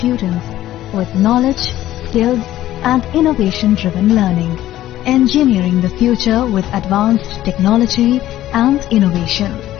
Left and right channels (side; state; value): right; quieter; 13.9 dB